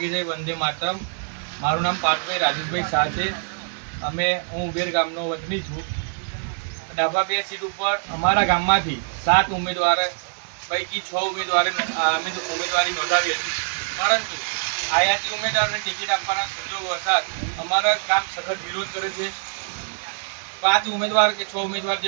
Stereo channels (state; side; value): silent; left; 63 dB below the other